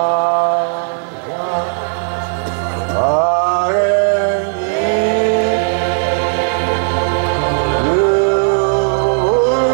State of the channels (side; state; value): left; silent; digital silence